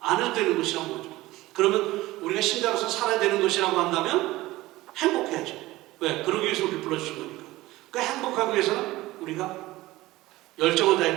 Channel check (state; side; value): quieter; left; 18.2 dB